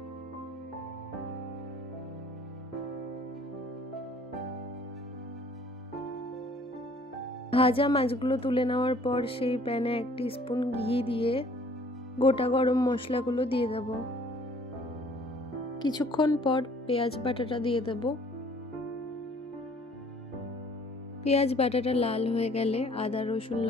ভাজা মাছগুলো তুলে নেওয়ার পর সেই প্যানে 1 টিস্পুন ঘি দিয়ে গোটা গরম মশলাগুলো দিয়ে দেব। কিছুক্ষণ পর পেঁয়াজ বাটাটা দিয়ে দেব। পেঁয়াজ বাটাটা লাল হয়ে গেলে আদা রসুন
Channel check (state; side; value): normal; both; correlation 0.56